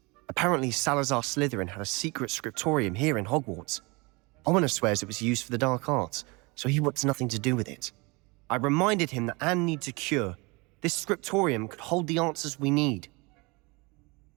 Apparently, Salazar Slytherin had a secret scriptorium here in Hogwarts. Ominous swears it was used for the dark arts, so he wants nothing to do with it. I reminded him that Anne needs a cure. This scriptorium could hold the answers we need.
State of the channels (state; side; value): quieter; left; 26.9 dB